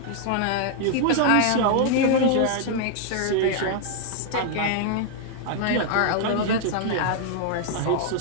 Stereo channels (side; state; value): both; different; correlation 0.00